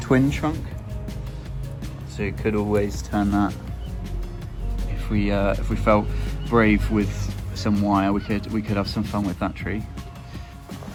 trunk, so you could always turn that if we felt brave with some wire. We could have some fun with that tree.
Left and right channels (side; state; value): both; identical; correlation 1.00